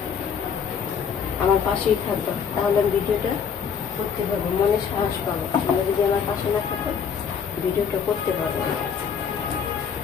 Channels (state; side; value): quieter; right; 6.9 dB